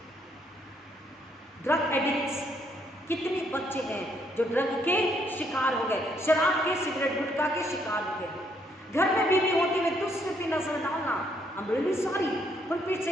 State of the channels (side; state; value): both; normal; correlation 0.71